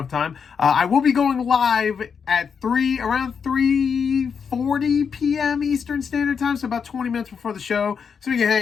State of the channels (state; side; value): quieter; right; 6.4 dB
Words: time. I will be going live at around 3:40 p.m. Eastern Standard Time, so about 20 minutes before the show, so we can